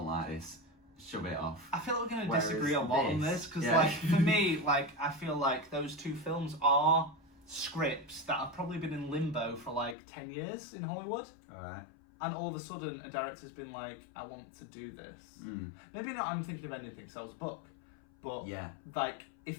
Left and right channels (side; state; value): right; drops out; at 10.0 s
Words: like this. Shove it off. I feel like we're going to disagree a lot on this because, like, for me, like I feel like those 2 films are scripts that have probably been in limbo for like 10 years in Hollywood. All right. And all of a sudden, a director's been like, I want to do this. Maybe not. I'm thinking of anything. So it was a book. But like,